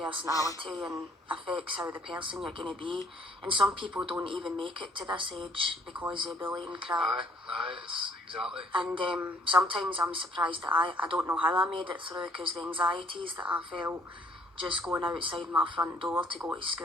and affects how the person you're going to be, and some people don't even make it to this age because of bullying crap. It's exactly. And sometimes I'm surprised that I don't know how I made it through, because the anxieties that I felt just going outside my front door to go to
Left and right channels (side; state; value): both; normal; correlation 0.61